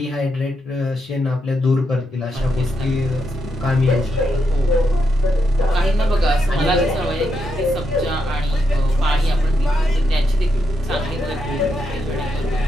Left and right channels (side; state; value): both; normal; correlation 0.82